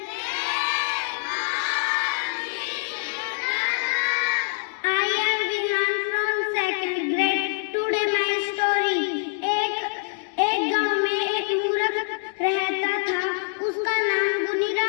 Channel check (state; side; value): silent; right; 62 dB below the other